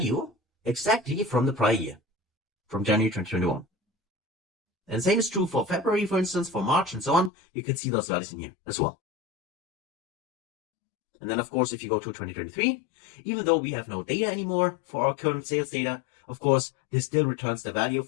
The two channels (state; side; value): drops out; right; at 7.3 s